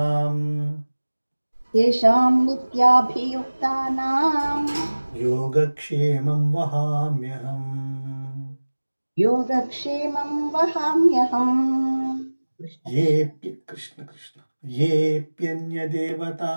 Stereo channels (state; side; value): inverted; both; correlation -1.00